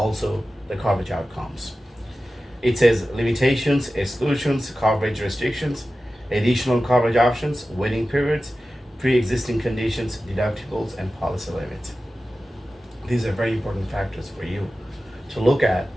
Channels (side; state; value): both; normal; correlation 0.94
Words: the coverage outcomes. It says limitations, exclusions, coverage restrictions, additional coverage options, waiting periods, pre-existing conditions, deductibles, and policy limits. These are very important factors for you to look at